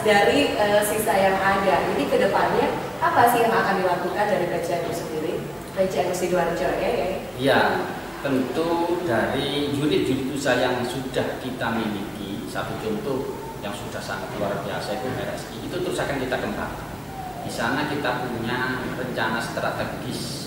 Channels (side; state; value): both; identical; correlation 1.00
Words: dari sisa yang ada, ini ke depannya apa sih yang akan dilakukan dari PCNU sendiri? PCNU Sidoarjo ya? Iya, tentu dari unit-unit usaha yang sudah kita miliki, satu contoh yang sudah sangat luar biasa itu RSI, itu terus akan kita kembangkan. Di sana kita punya rencana